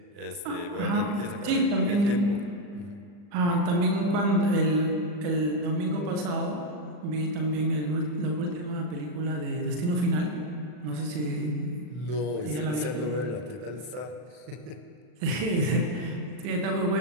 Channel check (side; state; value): left; late; 40 ms